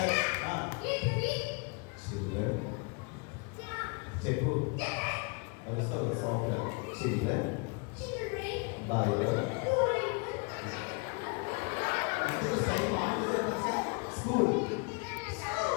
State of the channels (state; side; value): quieter; right; 32.3 dB